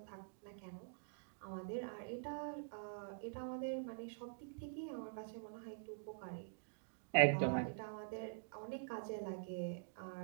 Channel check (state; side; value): silent; left; digital silence